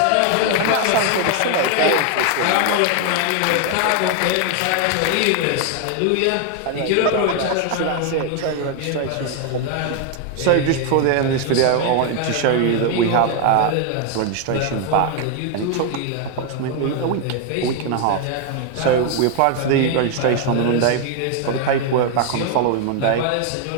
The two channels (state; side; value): different; both; correlation 0.01